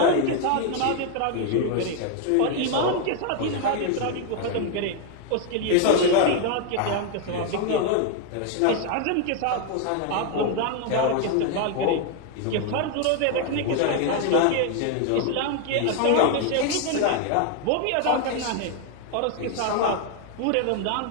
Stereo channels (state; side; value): different; both; correlation 0.00